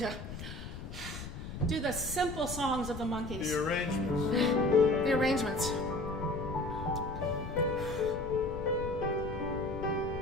do the simple songs of the Monkees. The arrangements. The arrangements.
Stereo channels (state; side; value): noise; left; rumble, 9 dB below the sound